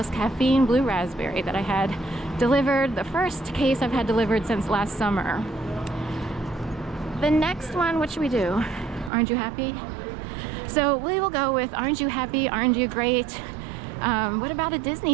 Caffeine Blue Raspberry that I had delivered, the first case I've had delivered since last summer. The next one, what should we do? Aren't you happy? So we will go with aren't you happy, aren't you great? What about a Disney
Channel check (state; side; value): drops out; left; at 9.1 s